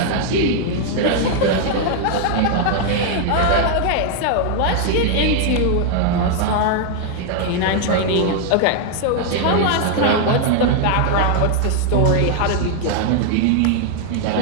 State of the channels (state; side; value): different; both; correlation 0.00